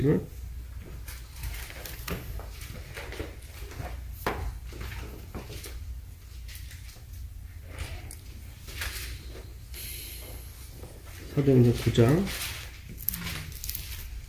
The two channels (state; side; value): identical; both; correlation 1.00